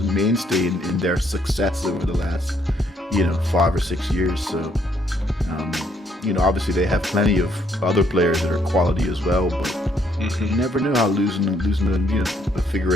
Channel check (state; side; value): normal; both; correlation 0.70